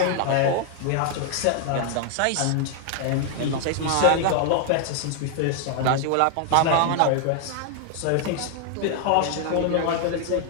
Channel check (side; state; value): both; different; correlation 0.00